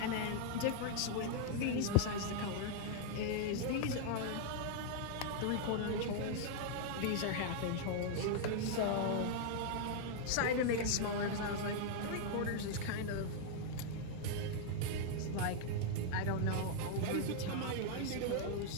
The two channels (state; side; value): different; both; correlation -0.01